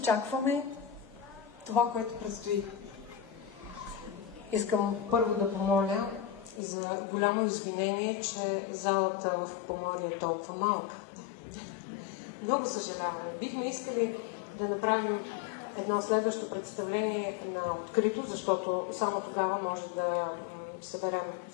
това, което предстои. Искам първо да помоля за голямо извинение, че залата в Поморие е толкова малка. Много съжалявам. Бихме искали да направим едно следващо представление на открито, защото само тогава може да съберем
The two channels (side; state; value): right; drops out; at 6.6 s